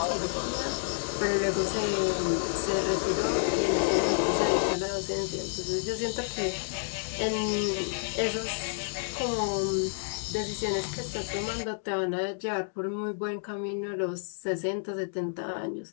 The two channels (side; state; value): right; silent; digital silence